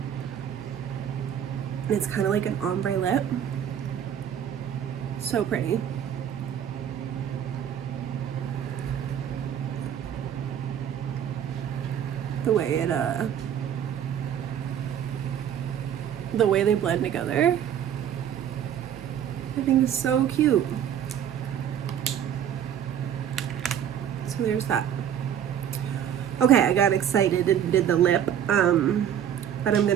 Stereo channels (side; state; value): left; quieter; 9.4 dB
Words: And it's kind of like an ombre lip. So pretty. The way they blend together, I think is so cute. So there's that. Okay, I got excited and did the lip, but I'm